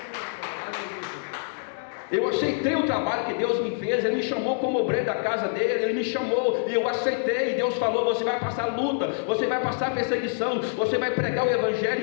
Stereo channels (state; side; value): silent; right; digital silence